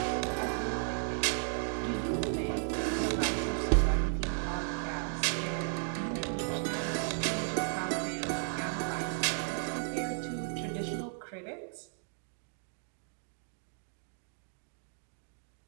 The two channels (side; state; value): left; silent; 55 dB below the other